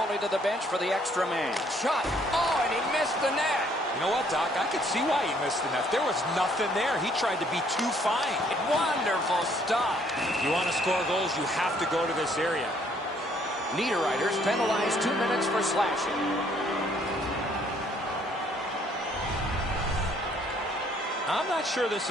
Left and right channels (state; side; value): normal; both; correlation 0.64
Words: to the bench for the extra man. Shot. Oh, and he missed the net. You know what, Doc? I could see why he missed the net. There was nothing there. He tried to be too fine. Wonderful stop. You want to score goals, you have to go to this area. Niederreiter's penalized 2 minutes for slashing. I'm not sure this